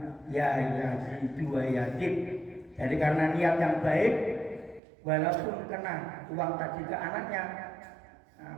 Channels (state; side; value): drops out; left; at 4.8 s